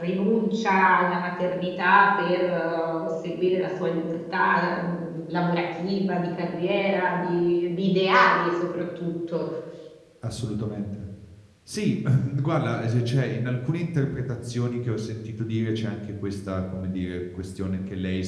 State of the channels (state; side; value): identical; both; correlation 1.00